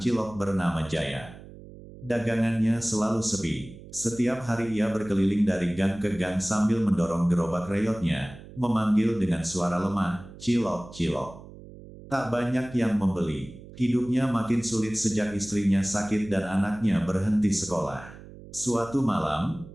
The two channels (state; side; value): noise; right; hum, 17 dB below the sound